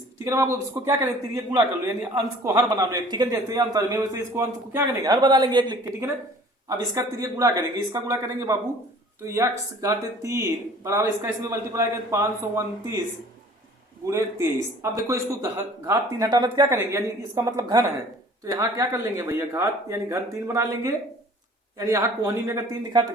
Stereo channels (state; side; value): normal; both; correlation 0.50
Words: ठीक है ना बाबू। इसको क्या करेंगे, तिरिया गुणा कर लो, यानी अंश को हर बना लो, ठीक है। जैसे अंतर में वैसे इसको अंश को क्या करेंगे, हर बना लेंगे एक लिख के, ठीक है ना। अब इसका तिरिया गुणा करेंगे, इसका गुणा करेंगे बाबू, तो x घाते 3 बराबर इसका इसमें मल्टीप्लाई करें 529 गुणे 23। अब देखो इसको घात 3 हटाना तो क्या करेंगे, यानी इसका मतलब घन है, तो यहाँ क्या कर लेंगे भैया, घात यानी घन 3 बना लेंगे, यानी यहाँ कोहनी में अगर 3 लिखा तो